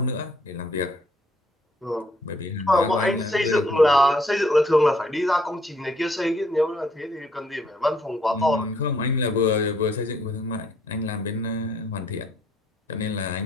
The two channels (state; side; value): normal; both; correlation 0.66